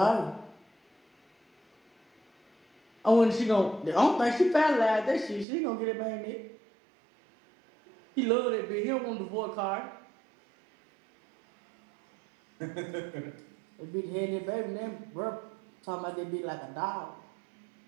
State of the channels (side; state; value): left; drops out; at 5.5 s